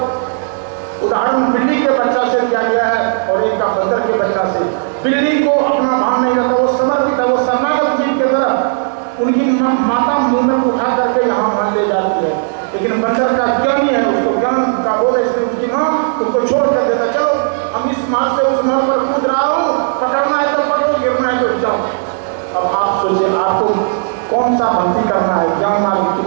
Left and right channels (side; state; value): left; silent; digital silence